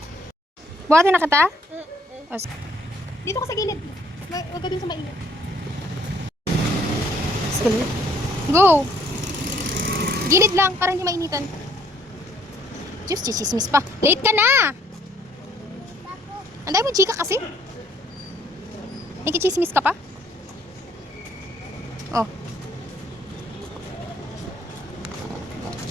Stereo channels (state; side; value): normal; both; correlation 0.63